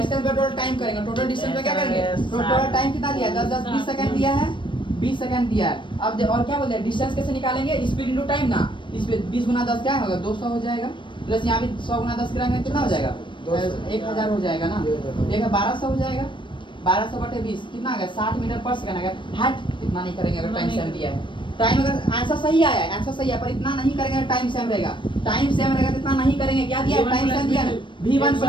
पे टोटल टाइम करेंगे। टोटल डिस्टेंस पे क्या करेंगे? टोटल टाइम कितना दिया है? 10 20 सेकंड दिया है, 20 सेकंड दिया है। अब और क्या बोलते हैं? डिस्टेंस कैसे निकालेंगे? स्पीड इनटू टाइम ना। इस पे 20 गुना 10 क्या होगा? 200 हो जाएगा। प्लस यहाँ भी 100 गुना 10 कराएंगे कितना हो जाएगा? 1000 हो जाएगा ना। देखा 1200 हो जाएगा। 1200 बटे 20 कितना आ गया? 60 मीटर पर सेकंड आ गया। हट इतना नहीं करेंगे अगर टाइम सेम दिया है। टाइम अगर आंसर सही आया है, आंसर सही है, पर इतना नहीं करेंगे, टाइम सेम रहेगा। टाइम सेम रहेगा तो इतना नहीं करेंगे। क्या दिया है? टाइम सेम दिया है। V1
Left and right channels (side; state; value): right; late; 0.24 ms